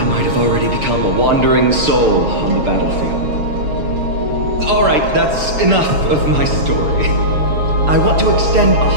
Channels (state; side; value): late; left; 6.8 ms